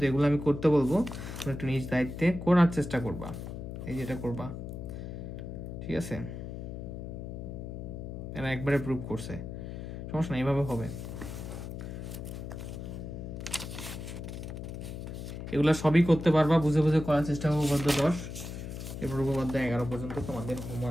যেগুলো আমি করতে বলবো তোমরা একটু নিজ দায়িত্বে করার চেষ্টা করবা, এই যেটা করবা। ঠিক আছে, এরা একবারে প্রুভ করছে, সমস্যা না, এইভাবে হবে। এগুলো সবই করতে পারবা, বুঝে বুঝে করার চেষ্টা করবো। উপপাদ্য 10, এরপর উপপাদ্য 11 পর্যন্ত তোমাদের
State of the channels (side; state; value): left; noise; hum, 8 dB below the sound